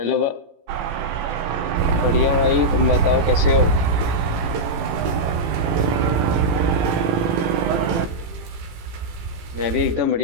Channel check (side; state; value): left; late; 18 ms